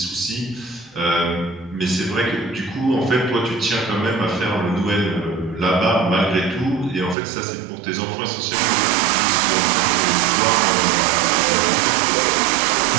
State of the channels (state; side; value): drops out; left; at 7.2 s